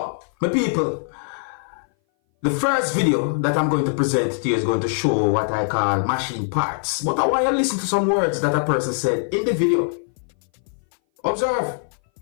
my people, the first video that I'm going to present to you is going to show what I call machine parts. But I want you to listen to some words that a person said in the video. Observe.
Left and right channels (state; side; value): silent; right; 59 dB below the other